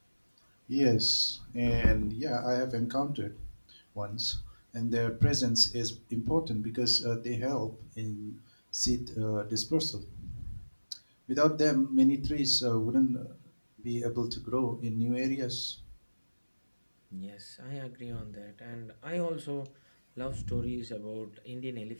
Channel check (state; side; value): inverted; both; correlation -1.00